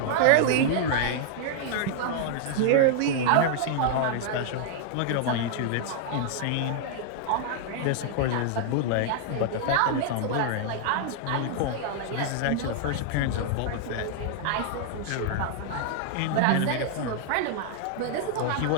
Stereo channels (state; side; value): different; both; correlation -0.01